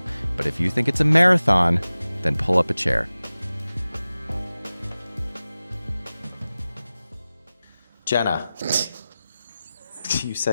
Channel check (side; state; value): both; inverted; correlation -0.96